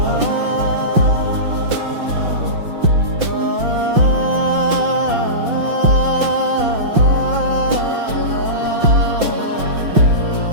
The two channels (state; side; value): late; left; 5.8 ms